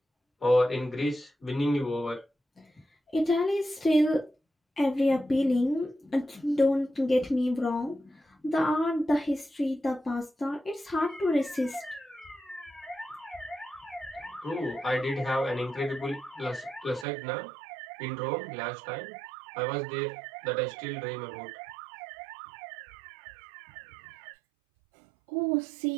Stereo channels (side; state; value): left; drops out; at 17.1 s